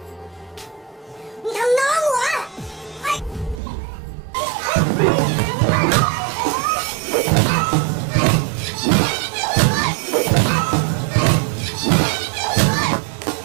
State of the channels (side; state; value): left; drops out; at 3.6 s